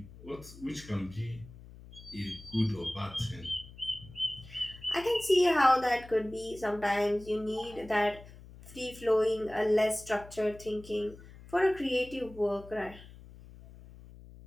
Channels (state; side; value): noise; left; hum, 18 dB below the sound